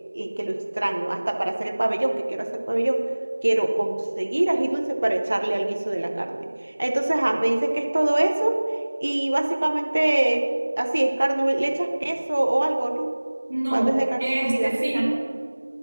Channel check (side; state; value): both; inverted; correlation -1.00